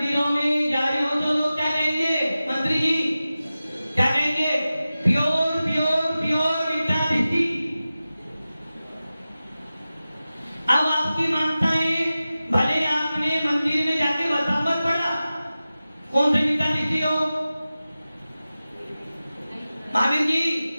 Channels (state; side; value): inverted; both; correlation -0.95